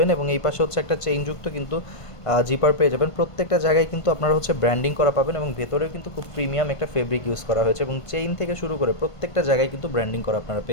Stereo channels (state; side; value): late; right; 1.5 ms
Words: এবং এই পাশে হচ্ছে একটা চেইনযুক্ত কিন্তু জিপার পেয়ে যাবেন। প্রত্যেকটা জায়গায় কিন্তু আপনারা হচ্ছে ব্র্যান্ডিং করা পাবেন এবং ভেতরে কিন্তু খুব প্রিমিয়াম একটা ফেব্রিক ইউজ করা হয়েছে এবং চেইন থেকে শুরু করে প্রত্যেকটা জায়গায় কিন্তু ব্র্যান্ডিং করা আপনারা